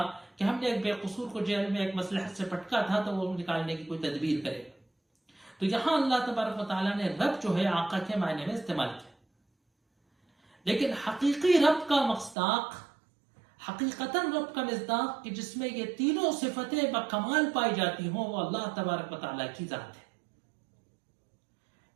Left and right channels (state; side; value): drops out; left; at 12.4 s